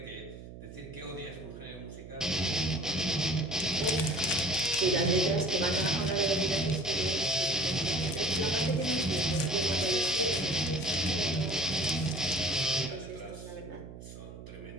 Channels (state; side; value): noise; right; hum, 14 dB below the sound